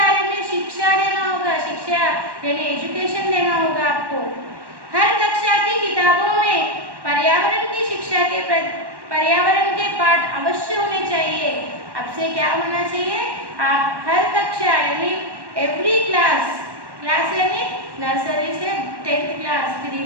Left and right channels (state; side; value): late; left; 1.1 ms